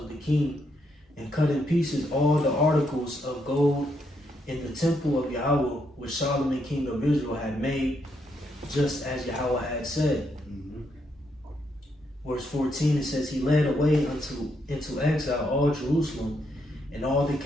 the king, and cut in pieces all the articles of gold in the temple of Yahweh which Solomon king of Israel had made, just as Yahweh had said. Verse 14, it says, he led away into exile all Jerusalem, and all the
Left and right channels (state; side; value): normal; both; correlation 0.77